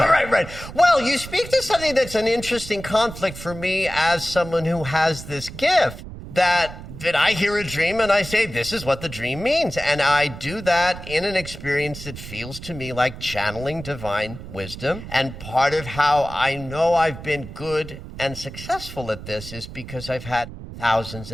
Well, you speak to something that's an interesting conflict for me as someone who has this gift. That I hear a dream and I say, this is what the dream means. And I do that in an experience that feels to me like channeling divine wisdom. And part of how I know I've been good and successful at this is because I've had thousands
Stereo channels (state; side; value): noise; right; rumble, 12 dB below the sound